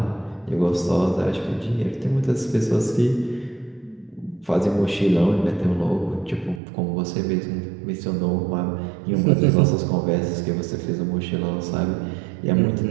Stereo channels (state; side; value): drops out; left; at 6.6 s